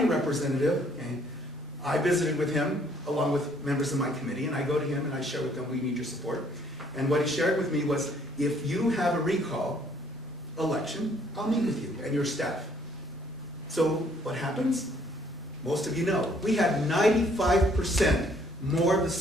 representative, and I visited with him along with members of my committee, and I go to him and I share with them, we need your support. And what he shared with me was, if you have a recall election, I'll meet with you and your staff. So what happens? Most of you know, we had 95% more of the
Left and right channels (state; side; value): normal; both; correlation 0.63